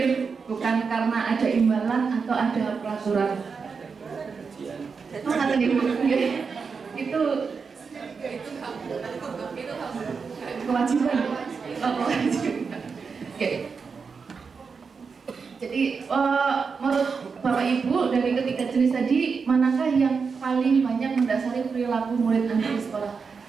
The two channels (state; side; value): quieter; left; 5.3 dB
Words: bukan karena ada imbalan atau ada peraturan. Itu kewajiban. Oke. Jadi menurut Bapak Ibu dari ketiga jenis tadi, manakah yang paling banyak mendasari perilaku murid Anda di sekolah?